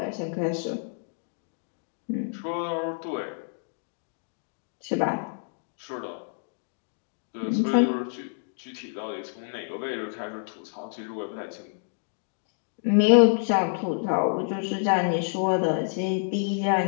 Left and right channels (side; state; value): right; silent; digital silence